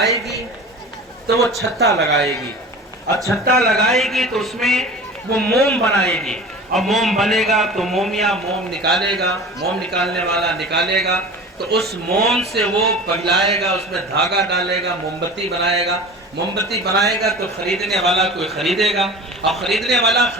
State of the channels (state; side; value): normal; both; correlation 0.37